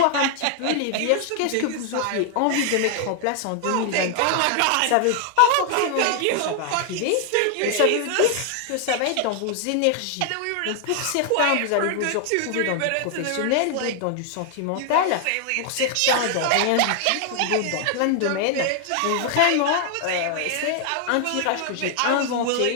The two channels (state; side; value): different; both; correlation 0.00